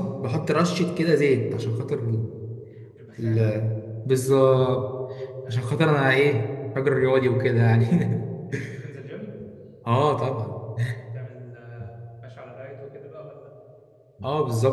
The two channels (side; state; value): both; identical; correlation 1.00